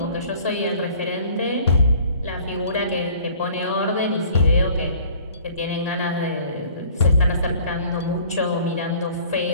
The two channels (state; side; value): inverted; both; correlation -0.52